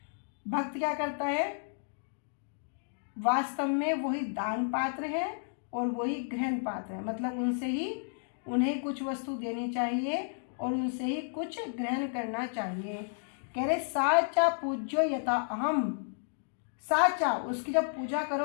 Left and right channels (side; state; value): right; silent; digital silence